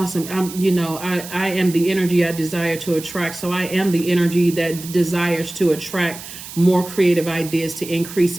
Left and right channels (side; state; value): right; noise; hiss, 13 dB below the sound